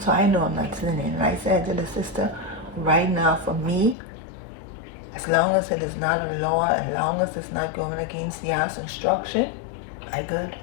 I know I'm not sinning. And I said to the sister, right now for me, as long as it is not a law, as long as it's not going against YAH's instruction, I good.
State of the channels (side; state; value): right; drops out; at 4.0 s